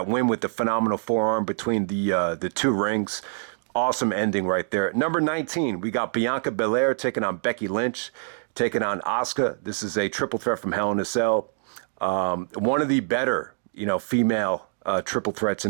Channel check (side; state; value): left; silent; digital silence